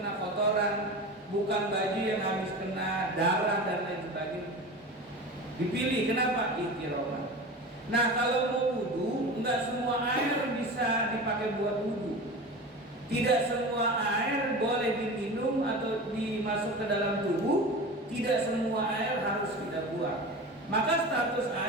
kotoran, bukan baju yang habis kena darah dan lain sebagainya. Dipilih, kenapa? Ihtiroman. Nah, kalau mau wudu, enggak semua air bisa dipakai buat wudu. Tidak semua air boleh diminum atau dimasuk ke dalam tubuh. Tidak semua air harus kita buang. Maka status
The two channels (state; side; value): normal; both; correlation 0.31